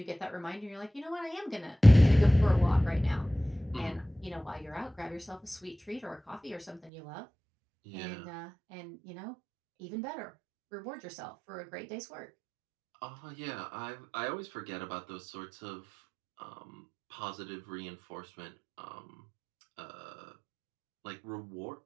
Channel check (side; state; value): left; drops out; at 6.9 s